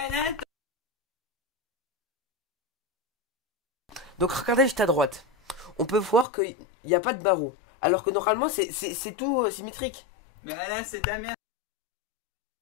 Donc regardez juste à droite. On peut voir qu'il n'y a pas de barreau. Alors que normalement c'est tout symétrique. Mais Alain, c'est ta mère.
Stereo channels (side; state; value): right; drops out; at 6.2 s